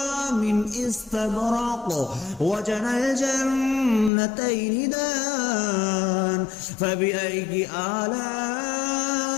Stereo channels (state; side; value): drops out; right; at 4.1 s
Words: من استبرق وجنى الجنتين دان فبأي آلاء